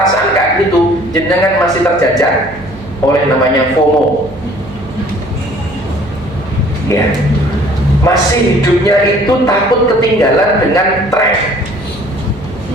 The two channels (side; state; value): right; noise; hum, 17 dB below the sound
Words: kayak gitu, jenengan masih terjajah oleh namanya FOMO. Ya, masih hidupnya itu takut ketinggalan dengan tren.